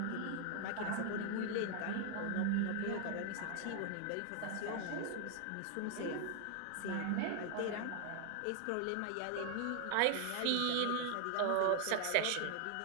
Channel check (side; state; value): both; different; correlation 0.00